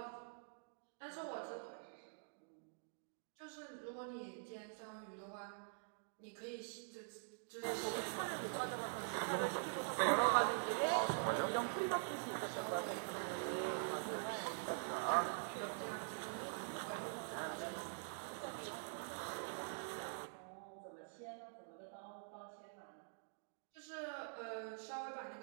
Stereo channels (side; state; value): left; silent; digital silence